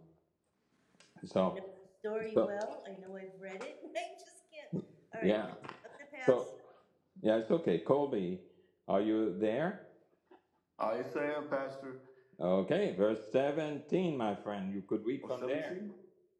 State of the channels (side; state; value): both; identical; correlation 1.00